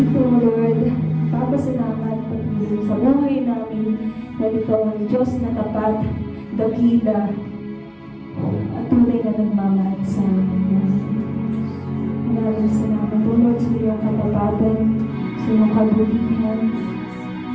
O Lord, papasalamat patuloy sa buhay namin dahil ikaw ang Diyos na tapat, dakila, at tunay na nagmamahal sa amin. Maraming salamat, O Lord, sa iyong katapatan, sa iyong kabutihan.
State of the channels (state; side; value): identical; both; correlation 1.00